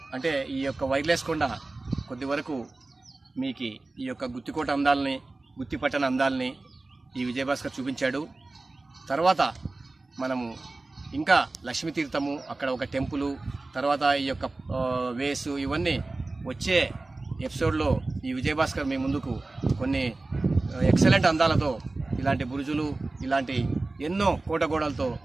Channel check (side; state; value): left; quieter; 3.2 dB